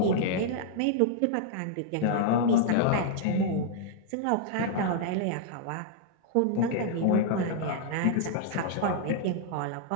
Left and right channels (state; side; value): different; both; correlation -0.01